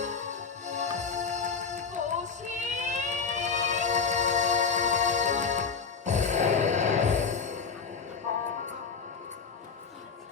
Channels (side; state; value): right; quieter; 5.4 dB